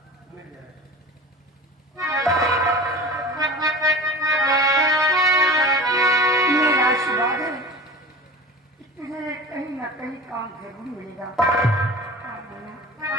मिल जाए। मेरा आशीर्वाद है कि तुझे कहीं ना कहीं काम जरूर मिलेगा।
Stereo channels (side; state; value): both; normal; correlation 0.36